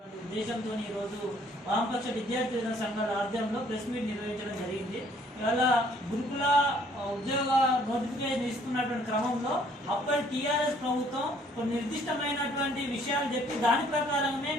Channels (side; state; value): both; normal; correlation 0.61